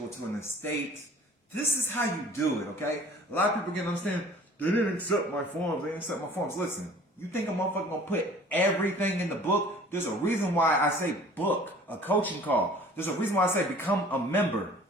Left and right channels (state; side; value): normal; both; correlation 0.49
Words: to an estate. This is how you do it, okay? A lot of people get to understand, they didn't accept my forms, they didn't accept my forms. Listen, you think a motherfucker gonna put everything in the book? There's a reason why I say book, a coaching call. There's a reason why I say become a member.